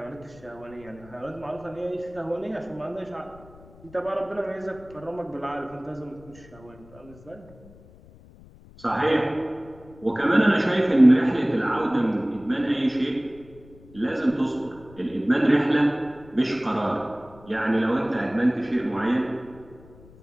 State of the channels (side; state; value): left; noise; rumble, 22 dB below the sound